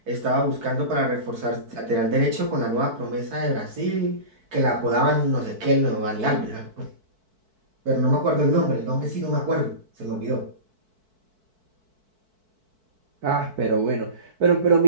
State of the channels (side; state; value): left; late; 4.6 ms